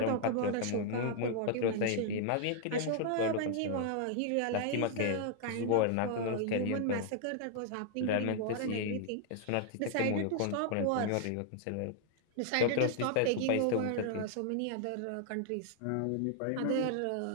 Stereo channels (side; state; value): both; different; correlation -0.01